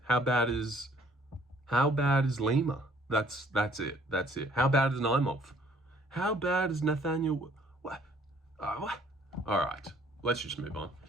How bad is Lima? That's it. That's it. How bad is Naimov? How bad is Nathaniel? What? What? All right, let's just move on.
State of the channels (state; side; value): normal; both; correlation 0.60